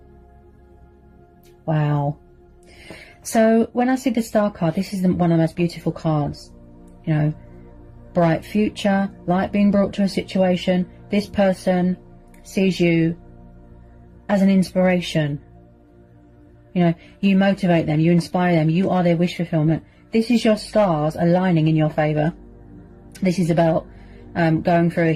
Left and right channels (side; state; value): both; identical; correlation 1.00